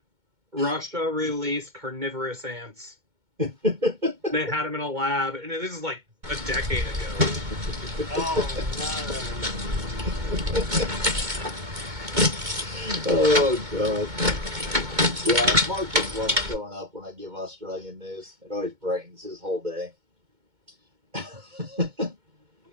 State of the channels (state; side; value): late; left; 2.2 ms